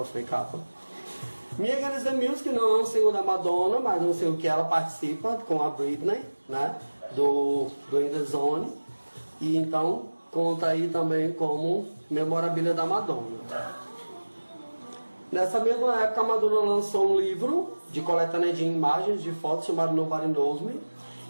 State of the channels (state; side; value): inverted; both; correlation -1.00